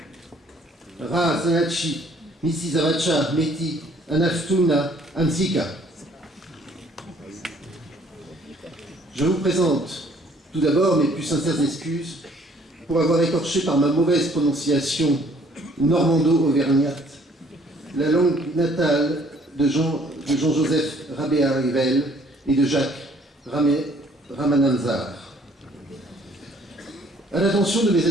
Ra Zanachi, Misi Zavacha Meti, Anaftuna Ansika. Je vous présente tout d'abord mes plus sincères excuses pour avoir écorché par ma mauvaise prononciation normando-auvergnate la langue natale de Jean-Joseph Rabéa-Rivel et de Jacques Ramananzar. À l'attention de mes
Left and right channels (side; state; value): both; normal; correlation 0.60